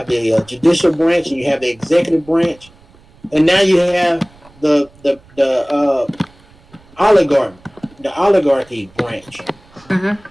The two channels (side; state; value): right; noise; rumble, 28 dB below the sound